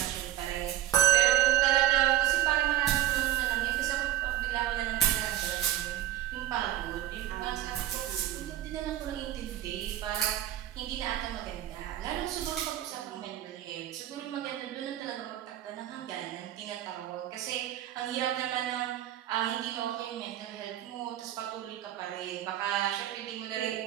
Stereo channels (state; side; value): quieter; left; 13.2 dB